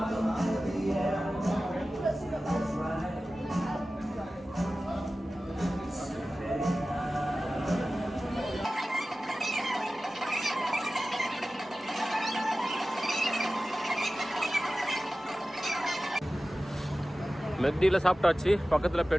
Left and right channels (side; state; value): both; normal; correlation 0.95